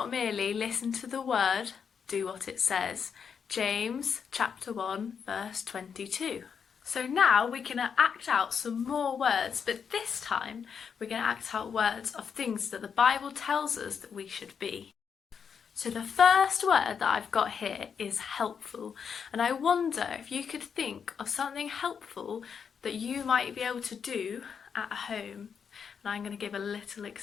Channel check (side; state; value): right; quieter; 6.8 dB